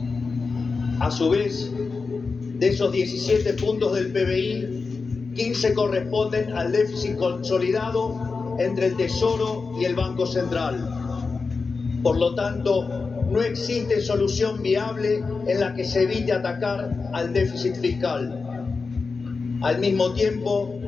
A su vez, de esos 17 puntos del PBI, 15 corresponden al déficit consolidado entre el Tesoro y el Banco Central. Por lo tanto, no existe solución viable en la que se evite atacar al déficit fiscal. Al mismo tiempo,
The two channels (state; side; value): quieter; right; 4.5 dB